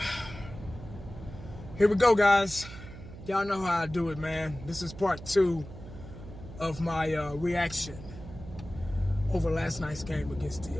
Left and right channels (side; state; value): right; noise; hum, 14 dB below the sound